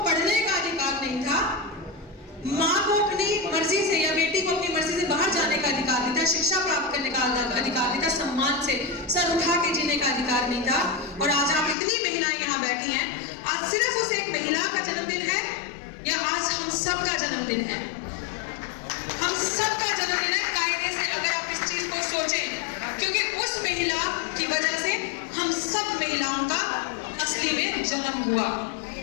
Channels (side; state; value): right; drops out; at 11.8 s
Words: पढ़ने का अधिकार नहीं था, माँ को अपनी मर्जी से या बेटी को अपनी मर्जी से बाहर जाने का अधिकार नहीं था, शिक्षा प्राप्त करने का अधिकार नहीं था, सम्मान से सर उठा के जीने का अधिकार नहीं था। और आज आप इतनी महिलाएं यहाँ बैठी हैं, आज सिर्फ उस एक महिला का जन्मदिन है या आज हम सबका जन्मदिन है? हम सबका जन्मदिन है कायदे से, अगर आप इस चीज को सोचें, क्योंकि उस महिला की वजह से हम सब महिलाओं का असली में जन्म हुआ।